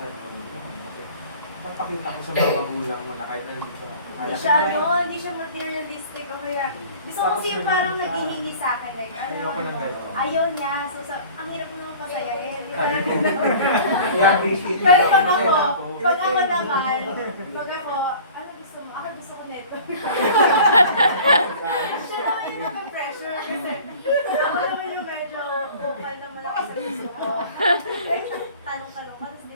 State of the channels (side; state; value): both; inverted; correlation -0.45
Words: mo. Kasi, papakita ko sa mga magulang mo na kahit na hindi sa Hindi siya materialistic o kaya, gusto ko kasi yung parang naghihingi sa akin, like, Ayoko ng gano'n. ayaw niya, so ang hirap naman pasayahin. Pero Pero pag ako naman, pag ako, ano gusto mo? Ako gusto ko nito. Siya naman yung naka-pressure kasi ako naman yung medyo vocal naman ako sa gusto ko. Like, tanong-tanong ka, tapos